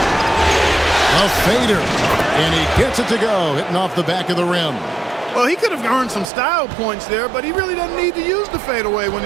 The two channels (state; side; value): drops out; left; at 6.3 s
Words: A fader. And he gets it to go, hitting off the back of the rim. Well, he could have earned some style points there, but he really doesn't need to use the fadeaway when